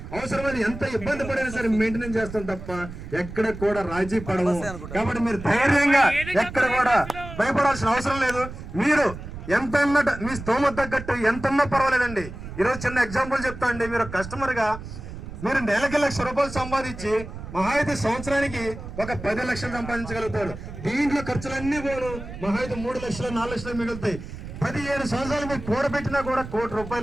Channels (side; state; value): right; noise; rumble, 11 dB below the sound